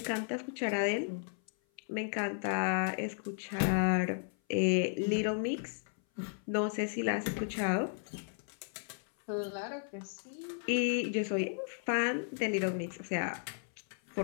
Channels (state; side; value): silent; right; 55 dB below the other